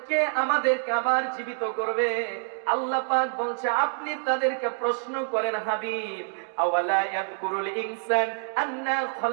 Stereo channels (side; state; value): left; silent; digital silence